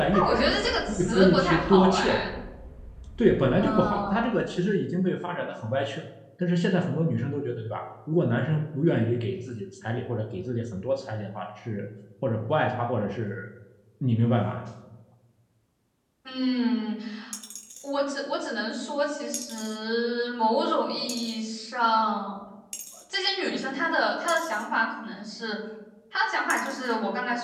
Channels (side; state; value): both; identical; correlation 1.00